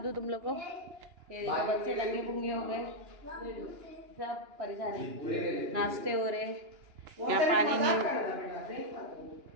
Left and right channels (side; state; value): left; late; 2.9 ms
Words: तुम लोग को, ये देखो बच्चे दंगे पुंगे हो गए, सब परेशान है। नाश्ते हो रहे, यहाँ पानी नहीं।